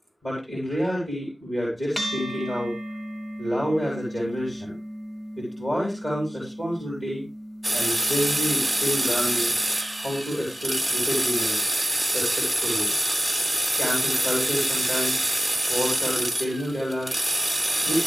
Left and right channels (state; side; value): normal; both; correlation 0.96